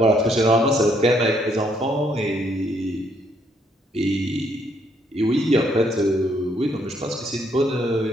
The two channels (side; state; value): both; normal; correlation 0.70